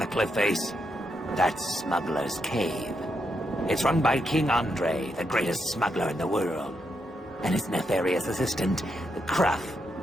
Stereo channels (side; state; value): both; normal; correlation 0.81